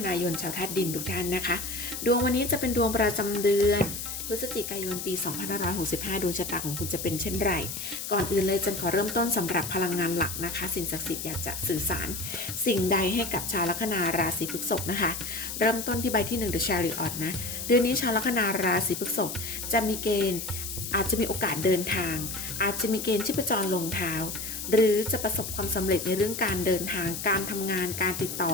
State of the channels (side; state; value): left; noise; hiss, 6 dB below the sound